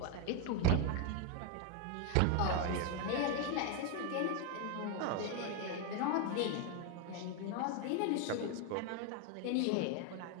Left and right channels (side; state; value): both; different; correlation 0.01